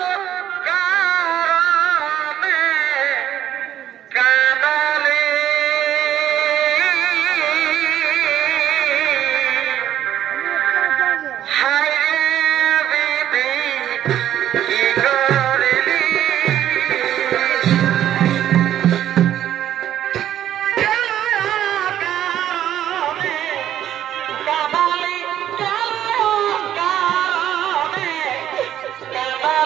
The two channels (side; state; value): left; quieter; 11.3 dB